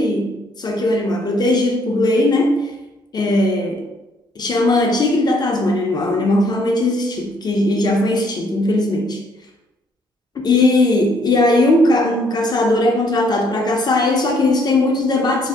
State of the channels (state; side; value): normal; both; correlation 0.66